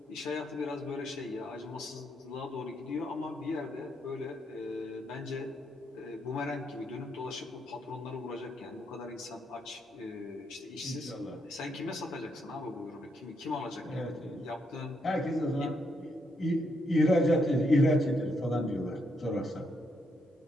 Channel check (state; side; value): normal; both; correlation 0.78